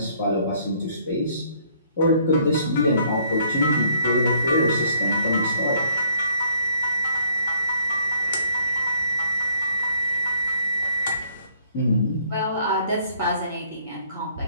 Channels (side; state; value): both; inverted; correlation -0.63